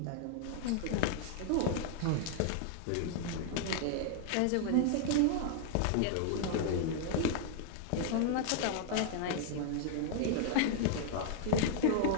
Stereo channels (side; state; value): both; different; correlation -0.01